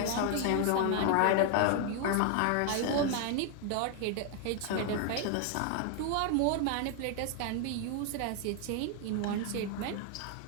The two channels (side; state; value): both; different; correlation 0.00